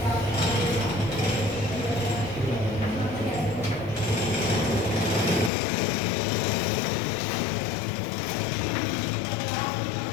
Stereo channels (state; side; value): drops out; right; at 5.5 s